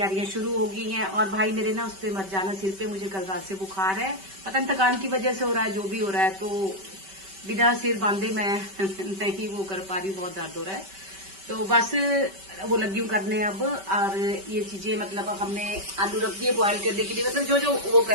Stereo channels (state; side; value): late; left; 5.2 ms